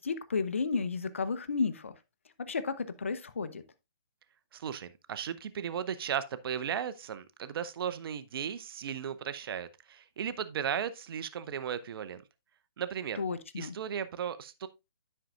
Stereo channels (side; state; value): both; inverted; correlation -0.47